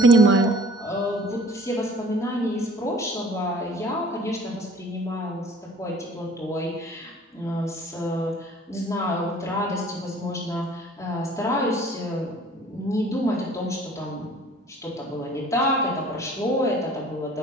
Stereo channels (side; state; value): both; normal; correlation 0.50